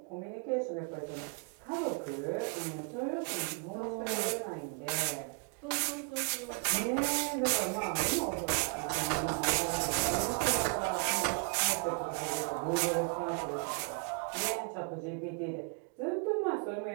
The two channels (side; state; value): left; quieter; 36.3 dB